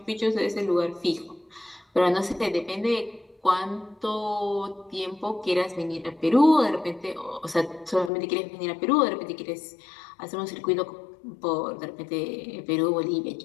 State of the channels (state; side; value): drops out; right; at 8.1 s